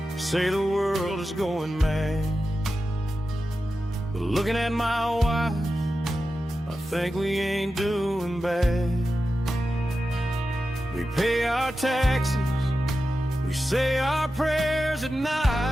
say the world is going mad, but looking at my wife, I think we ain't doing bad. We pay our taxes We say our prayers at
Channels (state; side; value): normal; both; correlation 0.92